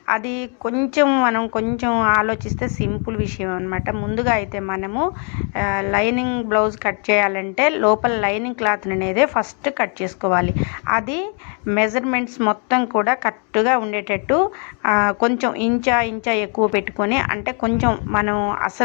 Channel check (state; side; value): quieter; right; 38.3 dB